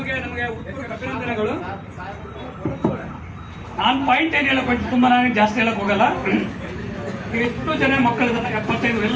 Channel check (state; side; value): identical; both; correlation 1.00